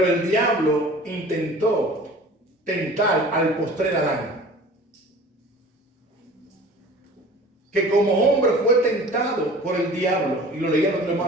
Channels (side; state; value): both; normal; correlation 0.44